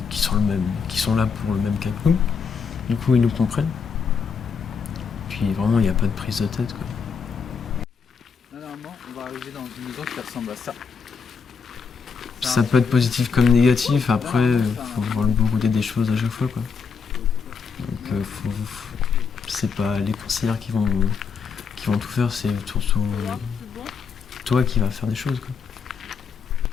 sont là pour le même cas que nous. Du coup, ils nous comprennent. Puis vraiment, il n'y a pas de prise de tête, quoi. Normalement, on va arriver dans une maison qui ressemble à ça. Ça peut être positif comme négatif. Après, faut voir le bon côté des choses à chaque fois, quoi. Donc, c'est pas les conseillers qui vont tout faire, c'est surtout toi qui vas faire des choses, quoi.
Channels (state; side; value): quieter; right; 5.7 dB